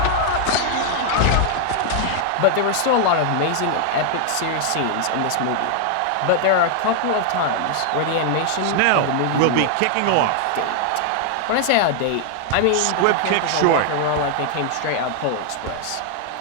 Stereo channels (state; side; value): different; both; correlation 0.00